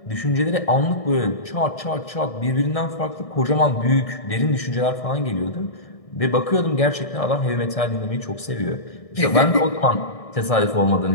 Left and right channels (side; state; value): right; late; 1.6 ms